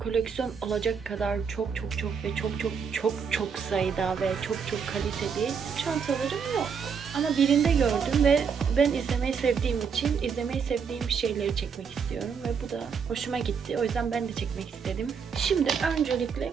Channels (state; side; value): quieter; left; 6.4 dB